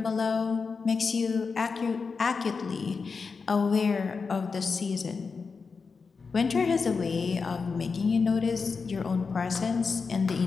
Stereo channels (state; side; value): quieter; right; 4.9 dB